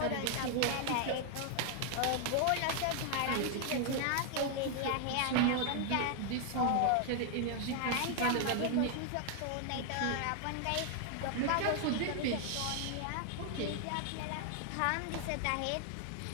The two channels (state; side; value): different; both; correlation 0.00